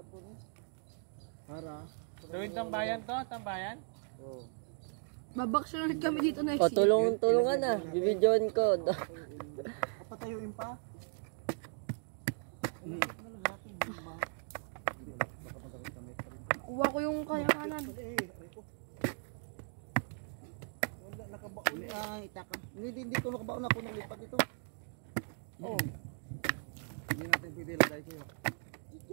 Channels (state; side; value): silent; left; 53 dB below the other